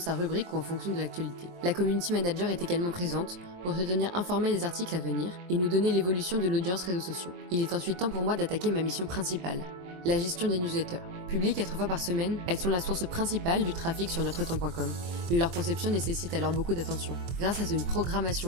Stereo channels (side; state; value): left; late; 23 ms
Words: rubrique ou en fonction de l'actualité. La community manager est également présente pour se tenir informée des articles à venir et nous donner l'évolution de l'audience réseaux sociaux. Il est ensuite temps pour moi d'attaquer ma mission principale, la gestion des newsletters. Publiées 4 fois par semaine, elles sont la source principale du trafic sur NotreTemps.com. Leur conception nécessite alors beaucoup d'attention. Grâce à une